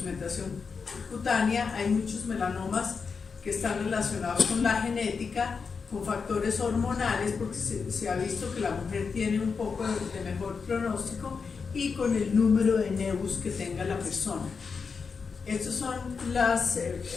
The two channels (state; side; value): quieter; right; 5.3 dB